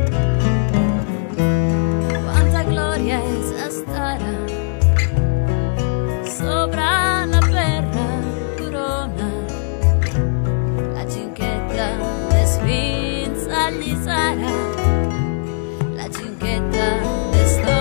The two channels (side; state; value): right; silent; digital silence